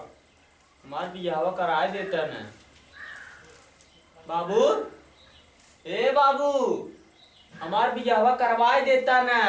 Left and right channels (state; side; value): identical; both; correlation 1.00